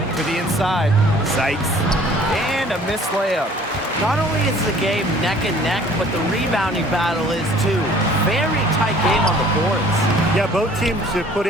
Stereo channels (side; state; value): both; normal; correlation 0.53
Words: To the inside. Sykes. And a missed layup. Not only is the game neck and neck, but the rebounding battle is too. Very tight game on the boards. Yeah, both teams have put